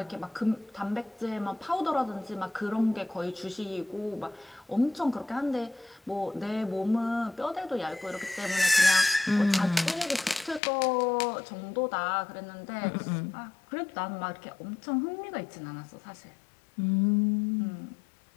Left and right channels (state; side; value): drops out; right; at 10.6 s